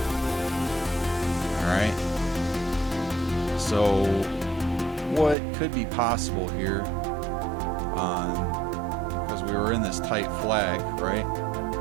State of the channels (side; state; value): left; drops out; at 5.4 s